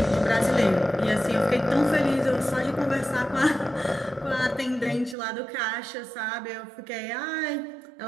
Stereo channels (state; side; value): drops out; left; at 5.2 s